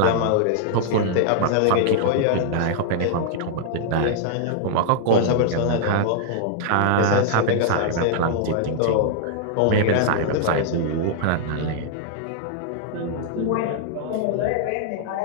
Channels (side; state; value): both; different; correlation -0.01